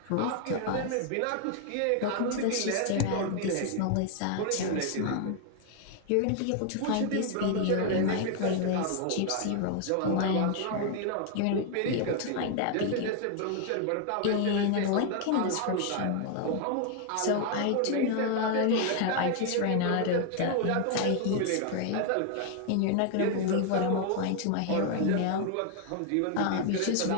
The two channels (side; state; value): both; different; correlation 0.00